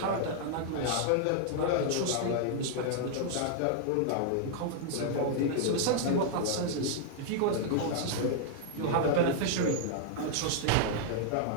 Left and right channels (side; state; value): both; different; correlation -0.01